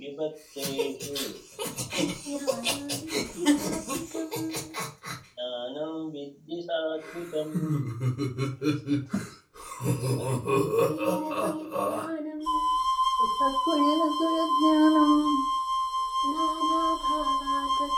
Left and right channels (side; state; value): both; identical; correlation 1.00